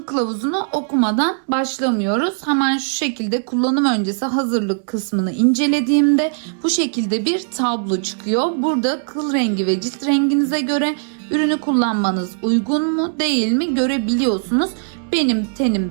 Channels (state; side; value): silent; left; digital silence